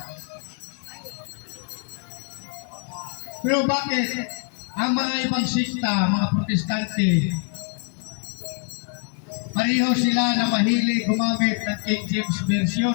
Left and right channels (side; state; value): right; quieter; 37.4 dB